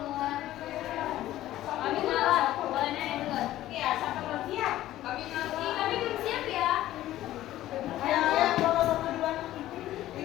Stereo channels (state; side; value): quieter; right; 14.3 dB